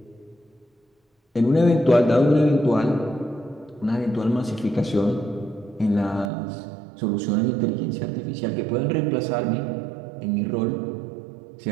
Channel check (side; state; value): left; drops out; at 6.3 s